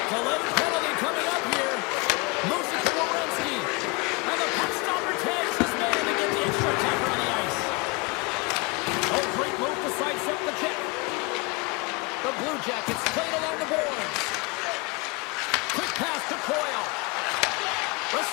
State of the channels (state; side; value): quieter; right; 28.0 dB